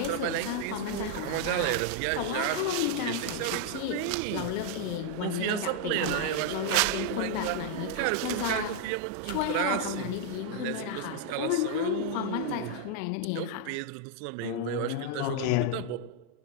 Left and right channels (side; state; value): both; different; correlation 0.00